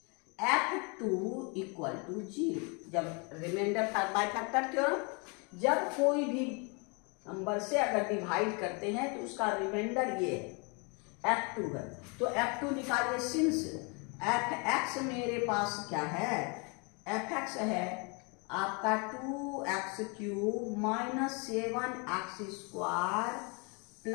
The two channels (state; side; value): quieter; right; 32.6 dB